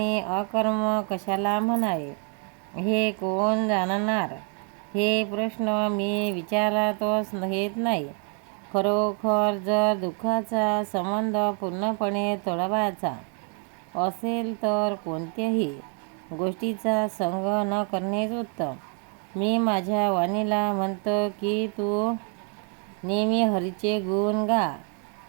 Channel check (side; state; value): left; quieter; 39.1 dB